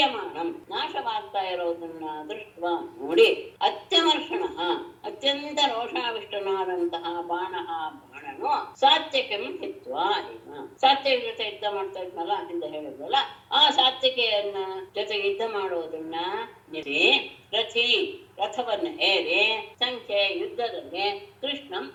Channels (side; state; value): both; identical; correlation 1.00